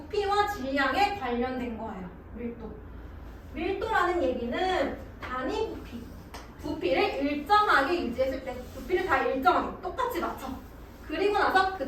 질량에 관련된 거예요. 밀도라는 얘기는 단위 부피를 일정하게 유지했을 때, 부피를 다 일정하게 똑같이 맞춰. 그리고 나서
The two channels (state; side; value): identical; both; correlation 1.00